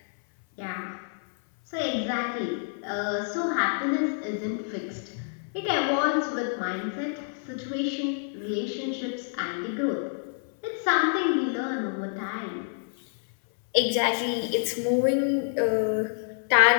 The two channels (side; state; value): right; silent; 58 dB below the other